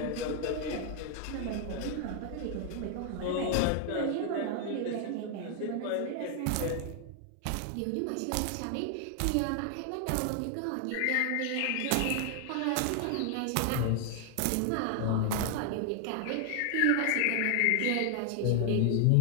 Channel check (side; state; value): both; different; correlation 0.00